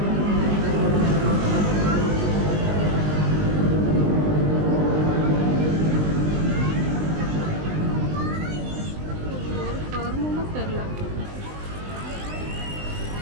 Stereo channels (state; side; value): late; left; 20 ms